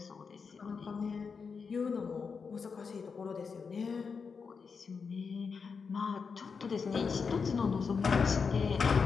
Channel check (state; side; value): quieter; right; 5.5 dB